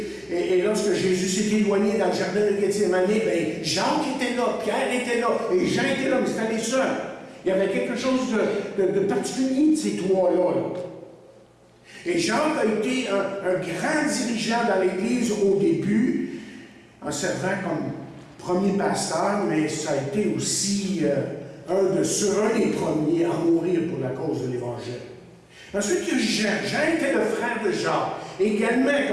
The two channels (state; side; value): identical; both; correlation 1.00